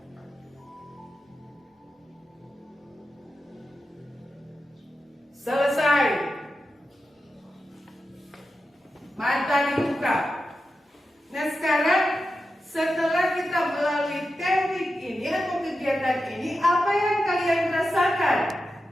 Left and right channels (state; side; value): normal; both; correlation 0.90